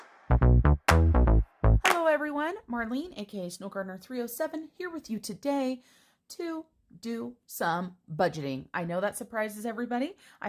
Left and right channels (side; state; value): both; identical; correlation 1.00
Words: Hello everyone, Marlene, aka Snow Gardener 307, here with you today to do some budgeting. I know that surprises everybody.